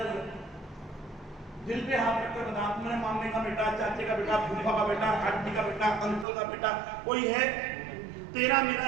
दिल पे हाथ रखकर बता, मेरे मामले का बेटा, चाचे का बेटा, फूफा का बेटा, आंटी का बेटा, अंकल का बेटा कोई है? तेरा मेरा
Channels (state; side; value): drops out; left; at 6.2 s